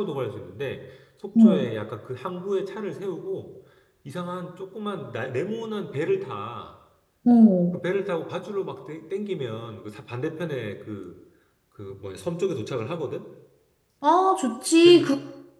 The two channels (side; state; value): both; identical; correlation 1.00